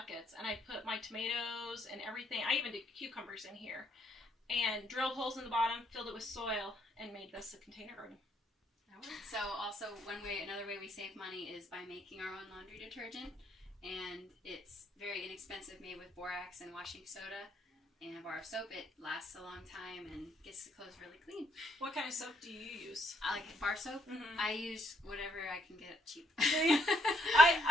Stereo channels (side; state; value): both; normal; correlation 0.72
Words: and I put my tomatoes and everything. I even did cucumbers in here. And drilled holes in the bottom, filled it with soil, and made this a container garden. So also another way we save money is by making our own laundry detergent, and it's very inexpensive, made with borax and washing soda and a bar of soap. It lasts a long time and gets the clothes really clean. What kind of soap do you use? I like bar soap. Mm-hmm. I use whatever I can get cheap.